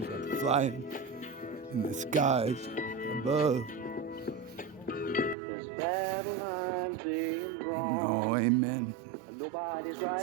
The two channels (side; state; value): left; drops out; at 5.4 s